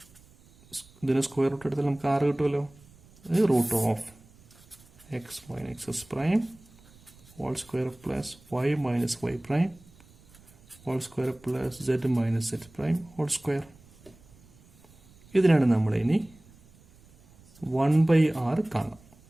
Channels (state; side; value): noise; right; rumble, 26 dB below the sound